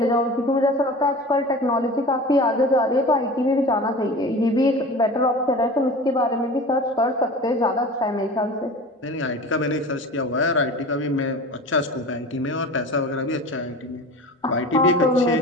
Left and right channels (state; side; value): normal; both; correlation 0.36